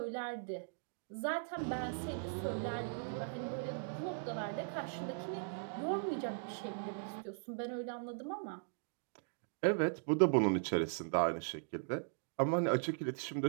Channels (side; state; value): left; silent; digital silence